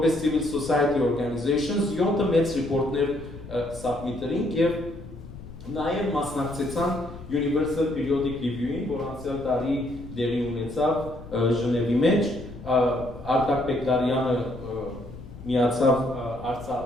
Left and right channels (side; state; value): left; noise; rumble, 15 dB below the sound